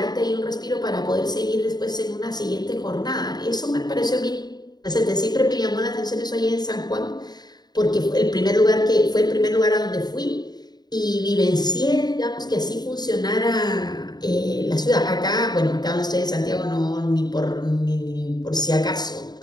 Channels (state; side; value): late; right; 0.20 ms